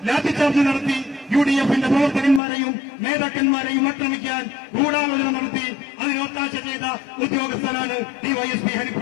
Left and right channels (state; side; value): drops out; right; at 2.4 s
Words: ലാത്തിച്ചാർജ് നടത്തി UDFന്റെ പ്രവർത്തകന്മാരെയും നേതാക്കന്മാരെയും ആക്രമിക്കാൻ ഗൂഢാലോചന നടത്തി അതിന് ഒത്താശ ചെയ്ത ഉദ്യോഗസ്ഥനാണ് DYSP